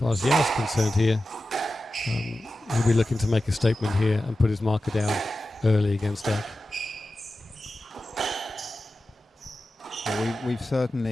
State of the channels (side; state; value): both; normal; correlation 0.93